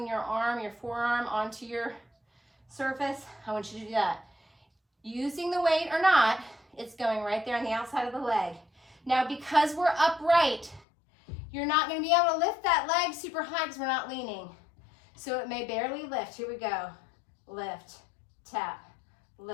your arm, your forearm onto your surface, I want you to do that. Using the weight or not, it's going right there on the outside of the leg. Now, because we're upright, you're not going to be able to lift that leg super high because we're not leaning. So it may barely lift. Here we go. Lift, tap,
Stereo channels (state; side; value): drops out; right; at 10.9 s